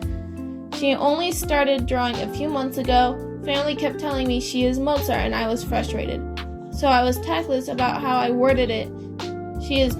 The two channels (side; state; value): both; identical; correlation 1.00